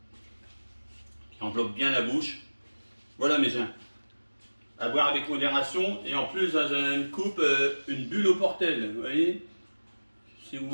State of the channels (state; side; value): inverted; both; correlation -1.00